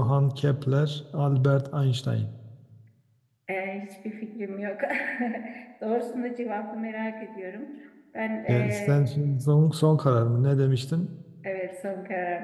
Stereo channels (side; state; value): both; identical; correlation 1.00